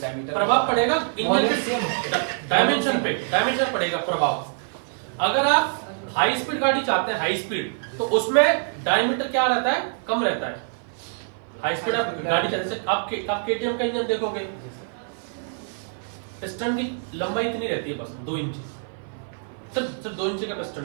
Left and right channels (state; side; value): silent; left; 56 dB below the other